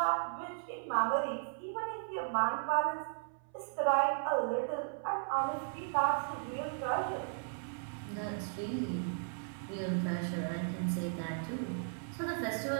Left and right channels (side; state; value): left; silent; 54 dB below the other